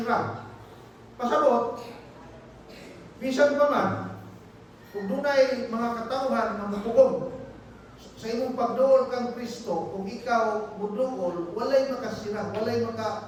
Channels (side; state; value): both; identical; correlation 1.00